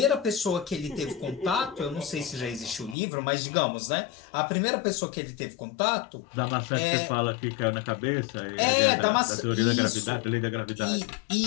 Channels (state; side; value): drops out; right; at 3.0 s